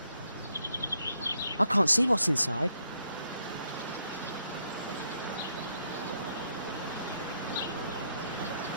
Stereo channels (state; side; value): inverted; both; correlation -0.75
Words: I can't see what's inside.